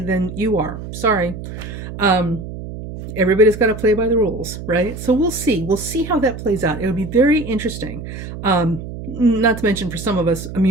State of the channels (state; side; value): noise; right; hum, 10 dB below the sound